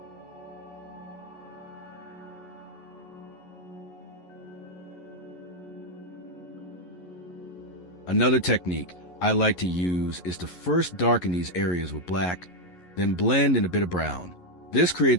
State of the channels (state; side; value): late; right; 11 ms